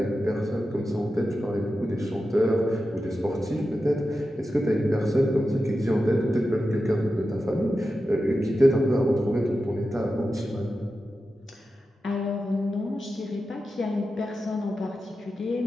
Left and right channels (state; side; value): normal; both; correlation 0.91